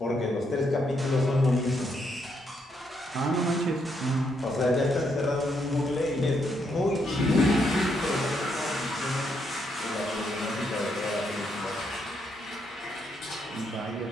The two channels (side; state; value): both; normal; correlation 0.77